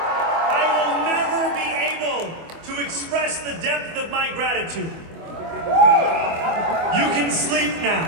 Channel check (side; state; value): left; late; 25 ms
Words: I will never be able to express the depth of my gratitude. You can sleep now.